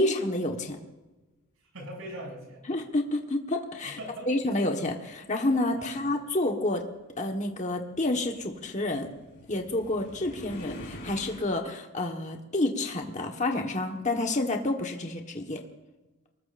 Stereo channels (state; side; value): normal; both; correlation 0.44